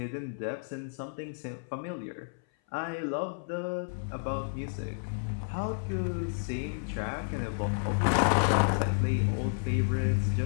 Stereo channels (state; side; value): silent; right; 57 dB below the other